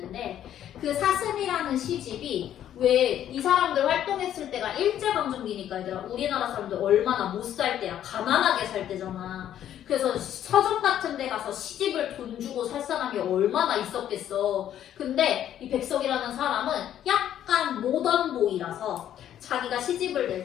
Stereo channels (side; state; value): right; quieter; 10.9 dB